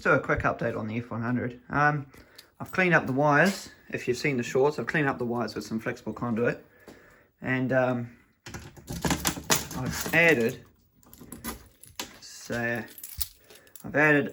do a quick update on the F100. I've cleaned up the wires. If you've seen the shorts, I've cleaned up the wires with some flexible conduit. And I've added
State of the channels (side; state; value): both; identical; correlation 1.00